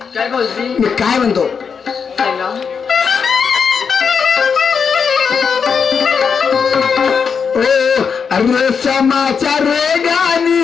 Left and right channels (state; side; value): quieter; right; 6.2 dB